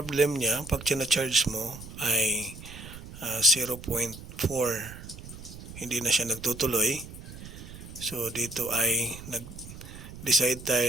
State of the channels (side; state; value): right; noise; rumble, 14 dB below the sound